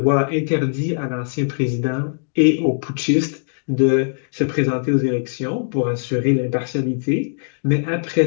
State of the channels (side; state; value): right; silent; digital silence